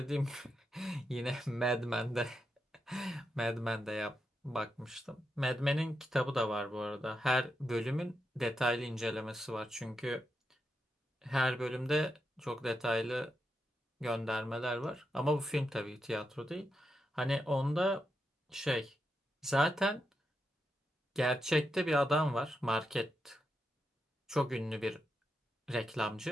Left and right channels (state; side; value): normal; both; correlation 0.86